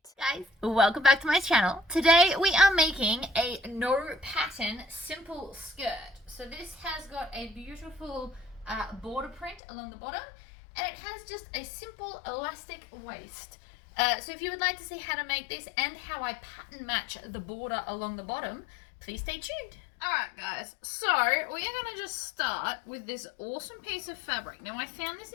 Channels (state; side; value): drops out; right; at 9.6 s